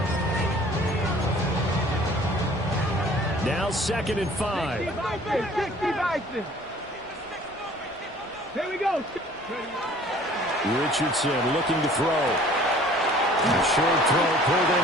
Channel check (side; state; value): both; normal; correlation 0.51